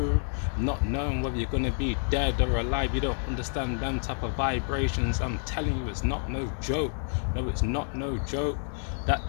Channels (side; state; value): right; silent; 59 dB below the other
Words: not knowing whether you're gonna be dead or alive. You don't understand them type of vibrations. I'm telling you, it's not no joke. No, it's not no joke. That